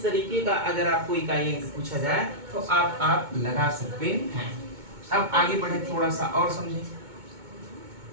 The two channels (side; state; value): left; late; 2.2 ms